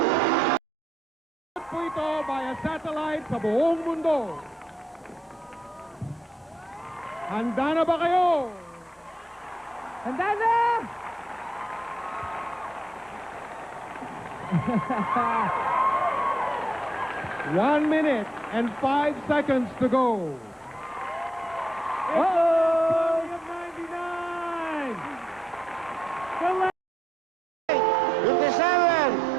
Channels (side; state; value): both; normal; correlation 0.81